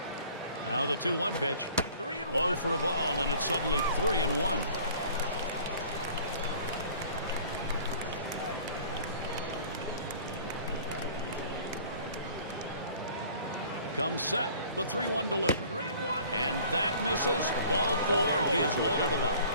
Now the 2-1 pitch. Low for a ball, and it's suddenly 3-1. Comes set, the 3-1 delivery. And that misses. Ball 4. He has loaded him up.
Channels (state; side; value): inverted; both; correlation -0.49